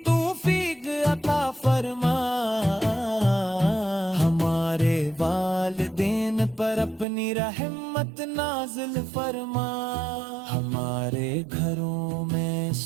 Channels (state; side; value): drops out; left; at 7.1 s